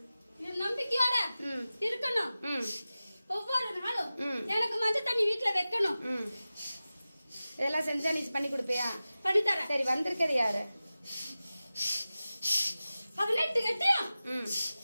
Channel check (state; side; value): inverted; both; correlation -0.96